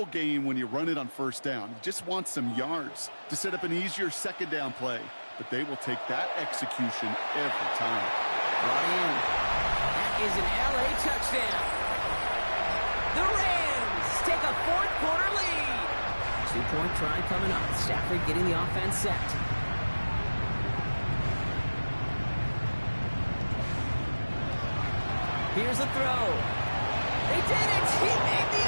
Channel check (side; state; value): both; inverted; correlation -1.00